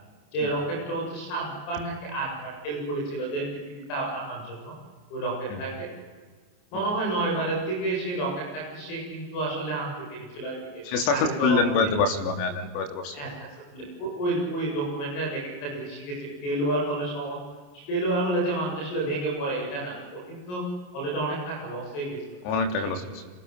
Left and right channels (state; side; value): late; right; 29 ms